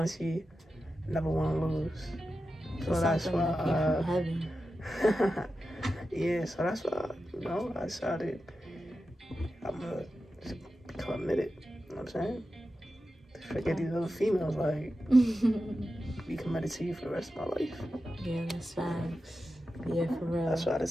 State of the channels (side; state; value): both; normal; correlation 0.91